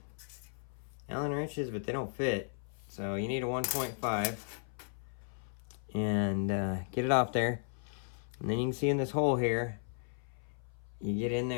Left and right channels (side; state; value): right; silent; 54 dB below the other